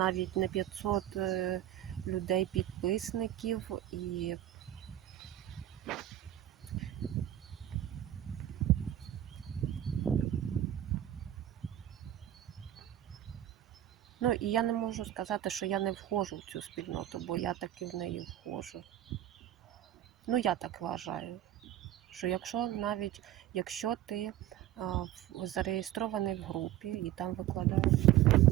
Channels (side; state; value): left; quieter; 12.7 dB